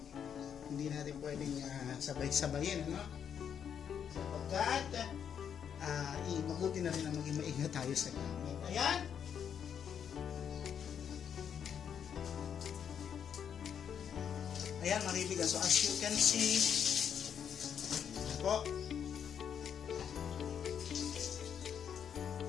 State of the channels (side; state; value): right; quieter; 8.1 dB